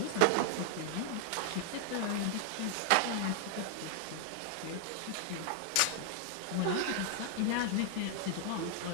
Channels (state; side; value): different; both; correlation 0.00